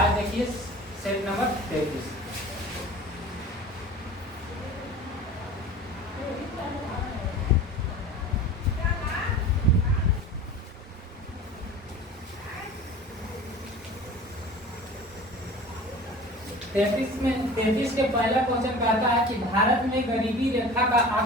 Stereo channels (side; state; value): both; normal; correlation 0.40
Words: देखिए सेट नंबर 33। तैतीस के पहला क्वेश्चन कहता है कि भारत में गरीबी रेखा का